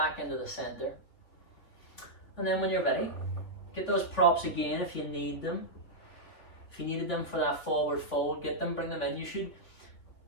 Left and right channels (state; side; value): late; right; 3.6 ms